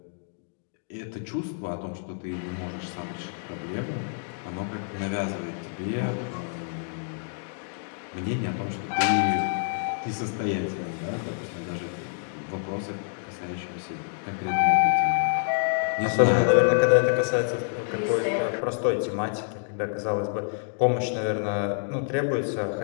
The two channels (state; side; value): silent; right; digital silence